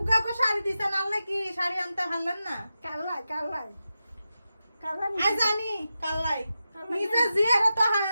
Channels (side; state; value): both; inverted; correlation -0.91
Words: গো শাড়ি দিছেন আল্লাহ কি শাড়ি আনতে হারলেন না কাল্লাই কাল্লাই কাল্লাই আই জানি কাল্লাই কাল্লাই নিজে জিয়ারে তো